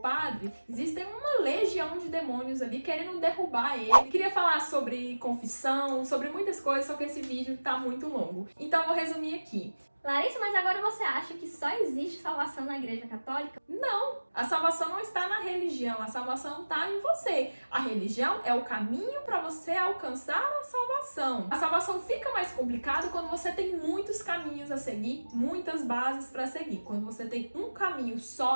existem uma legião de demônios ali querendo derrubar ele. Queria falar sobre confissão, sobre muitas coisas, só que esse vídeo tá muito longo. Então, vou resumir aqui. Larissa, mas agora você acha que só existe salvação na Igreja Católica? Não, a salvação não está na religião, a salvação está em você. A religião é o caminho para você alcançar a salvação. A salvação fica mais complicada quando você tem muitos caminhos a seguir, muitas bases para seguir. Quando você tem um caminho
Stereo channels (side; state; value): both; inverted; correlation -1.00